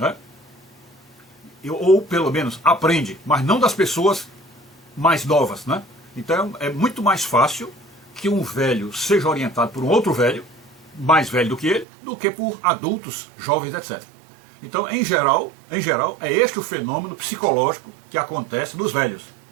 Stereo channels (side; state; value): left; drops out; at 11.9 s